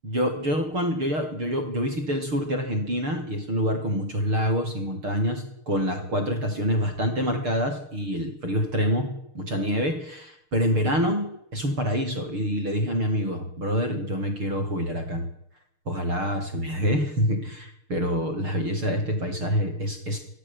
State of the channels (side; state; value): left; late; 6.6 ms